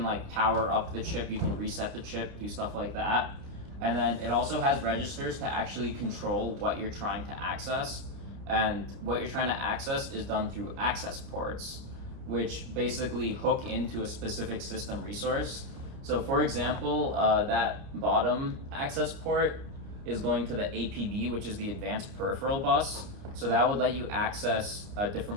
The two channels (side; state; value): left; late; 29 ms